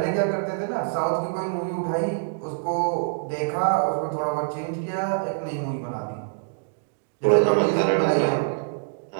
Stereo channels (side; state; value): left; silent; digital silence